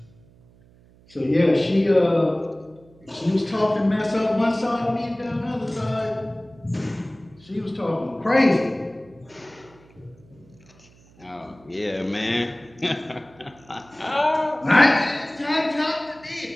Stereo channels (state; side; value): noise; right; hum, 27 dB below the sound